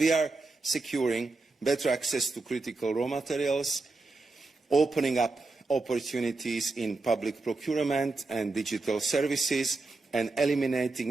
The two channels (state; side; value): quieter; left; 3.4 dB